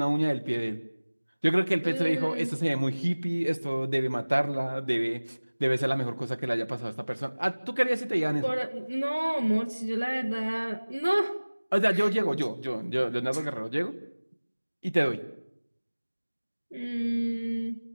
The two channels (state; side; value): inverted; both; correlation -1.00